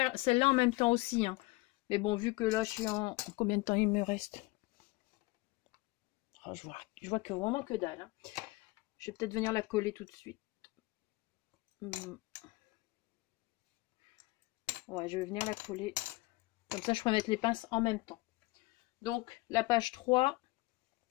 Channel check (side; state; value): right; quieter; 21.9 dB